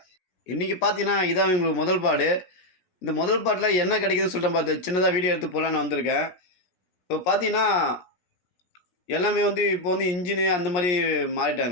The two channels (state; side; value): late; right; 17 ms